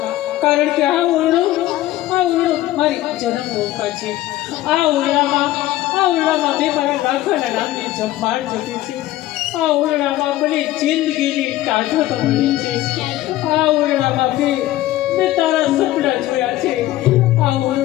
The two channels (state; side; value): quieter; right; 15.6 dB